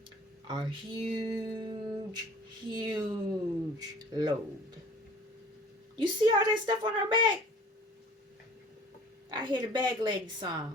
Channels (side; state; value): both; normal; correlation 0.48